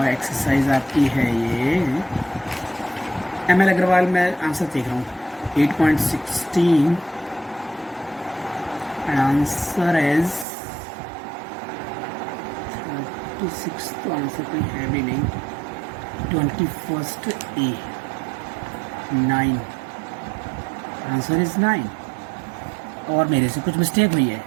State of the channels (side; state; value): left; drops out; at 10.5 s